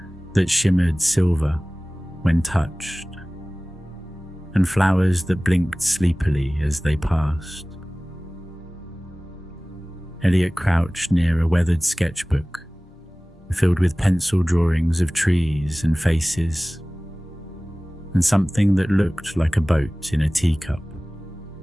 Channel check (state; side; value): normal; both; correlation 0.98